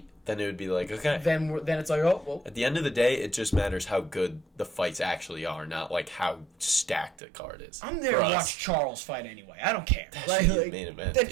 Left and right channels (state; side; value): drops out; left; at 7.2 s